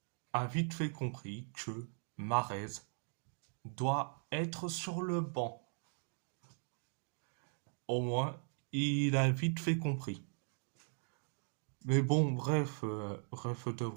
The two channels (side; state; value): left; silent; 52 dB below the other